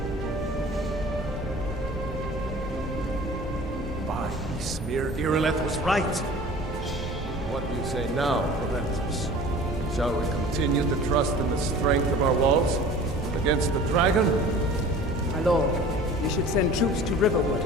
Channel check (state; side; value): normal; both; correlation 0.43